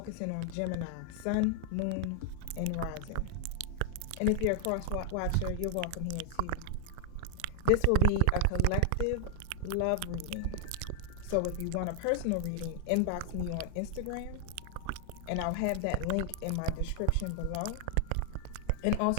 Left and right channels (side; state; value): both; different; correlation 0.00